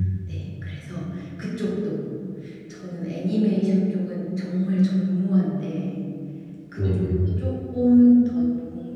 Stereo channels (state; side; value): identical; both; correlation 1.00